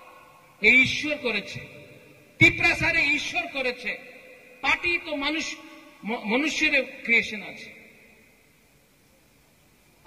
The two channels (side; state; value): both; identical; correlation 1.00